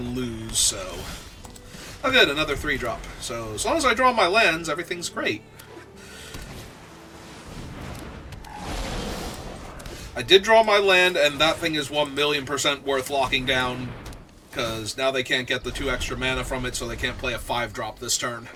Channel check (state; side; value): identical; both; correlation 1.00